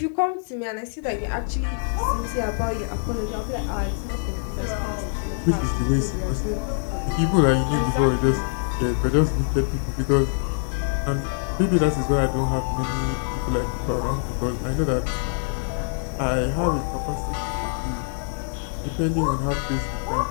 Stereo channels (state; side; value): silent; right; 55 dB below the other